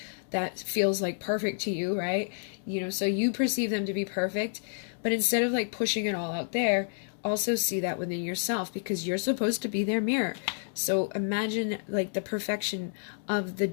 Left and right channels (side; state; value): right; silent; digital silence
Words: that feels like perfect to you, right? You know, so you perceive them to be perfect, but instead of like pushing it all out there, also see that within yourself, because you're supposed to be their mirror. So imagine like the perfection of the